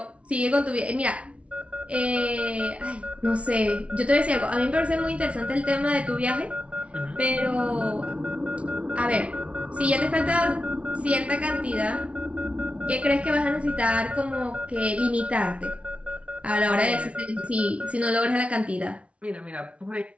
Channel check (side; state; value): left; late; 0.062 ms